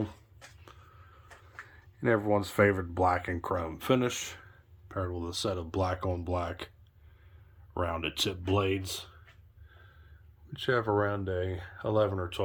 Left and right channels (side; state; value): both; identical; correlation 1.00